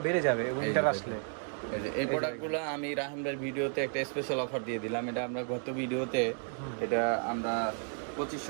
বেড়ে যাবে উইন্টার আসলে। এই প্রোডাক্টগুলো আমি রাহান ভাইয়ের ভিডিওতে একটা স্পেশাল অফার দিয়ে দিলাম। এটা আমরা গত ভিডিওতে এটা আমরা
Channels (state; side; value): silent; left; 56 dB below the other